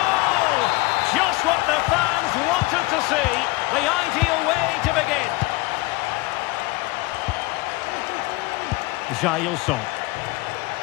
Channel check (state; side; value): quieter; right; 21.9 dB